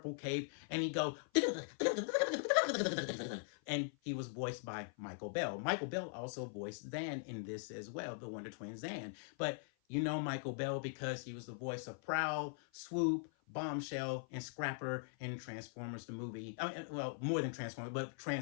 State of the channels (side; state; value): right; silent; 50 dB below the other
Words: cape, and he'd go, and he was voiced by Michael Bell. Michael Bell also voiced Zan in this as well, the Wonder Twin Zan. But you know Michael Bell because he was the voice of Prowl, Swoop, Bombshell, and Scrapper in Transformers the movie. I mean, well, more than Transformers, but